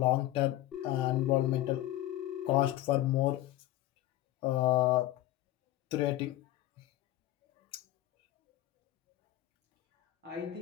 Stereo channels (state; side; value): quieter; right; 14.9 dB